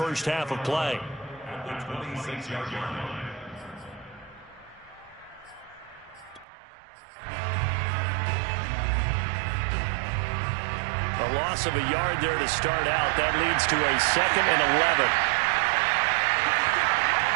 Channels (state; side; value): drops out; left; at 6.5 s